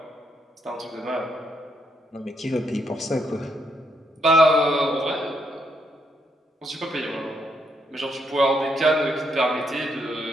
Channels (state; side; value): normal; both; correlation 0.76